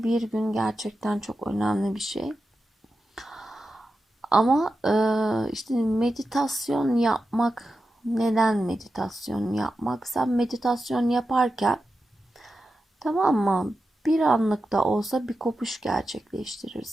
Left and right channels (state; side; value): normal; both; correlation 0.91